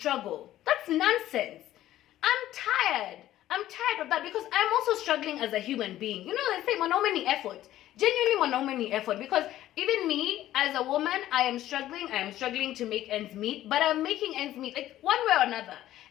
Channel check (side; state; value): right; quieter; 13.7 dB